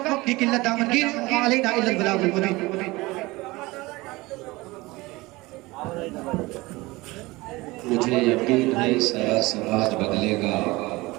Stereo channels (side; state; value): left; quieter; 21.5 dB